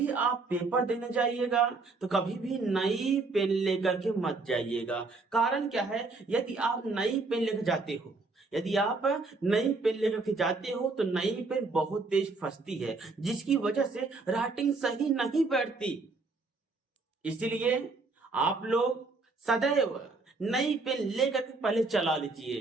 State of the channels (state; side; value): quieter; left; 3.7 dB